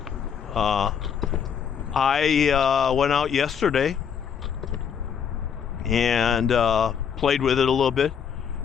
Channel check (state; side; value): quieter; right; 7.5 dB